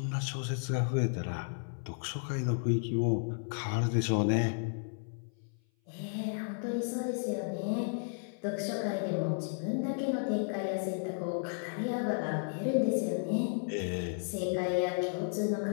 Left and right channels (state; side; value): silent; right; 55 dB below the other